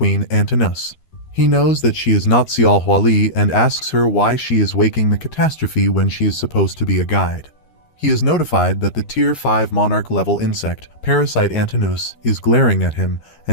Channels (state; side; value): late; right; 13 ms